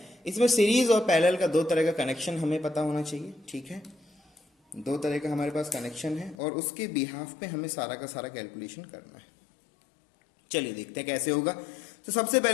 इसमें सीरीज और पैरेलल का दो तरह का कनेक्शन हमें पता होना चाहिए, ठीक है। दो तरह का हमारे पास कनेक्शन है और उसके बिहाफ पे हमें सारा का सारा कैलकुलेशन करना है। चलिए देखते हैं कैसे होगा। तो सबसे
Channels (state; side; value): drops out; right; at 6.4 s